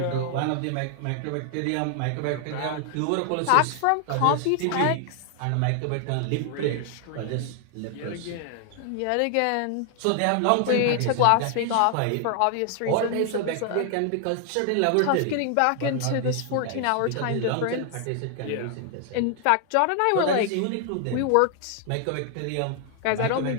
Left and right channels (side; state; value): both; different; correlation 0.00